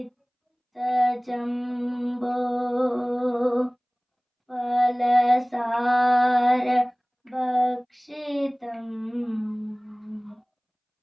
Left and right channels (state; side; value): identical; both; correlation 1.00